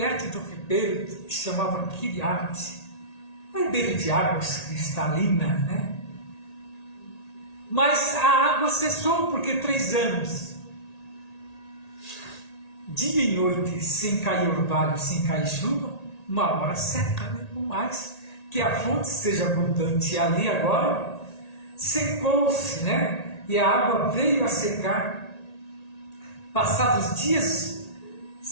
do ribeiro que se chamava Quiriate, um ribeiro de águas cristalinas, né? Mas a água cessou, porque 3 anos, dia e noite, sem cair orvalho, sem cair chuva, uma hora seca, né? Por mais que a fonte seja abundante. E ali agora secou-se, né? E a água veio a secar. Passados dias,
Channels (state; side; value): late; right; 1.8 ms